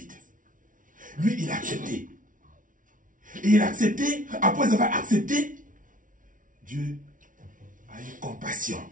Lui, il a accepté. Et il a accepté, après avoir accepté, Dieu a eu compassion.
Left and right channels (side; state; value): left; late; 0.38 ms